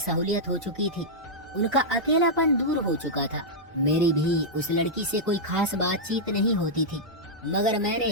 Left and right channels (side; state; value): both; normal; correlation -0.08